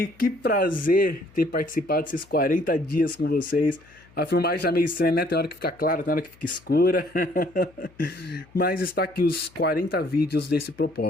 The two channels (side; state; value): left; noise; hum, 28 dB below the sound